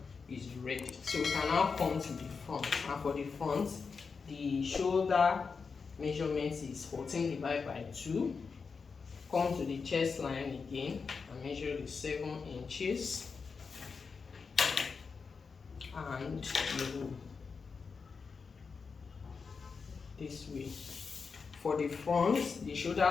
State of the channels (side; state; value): right; quieter; 5.2 dB